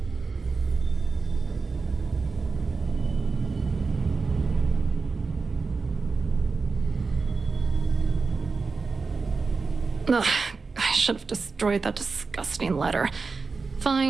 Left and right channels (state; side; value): quieter; left; 4.4 dB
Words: Ugh, I should have destroyed that disgusting letter.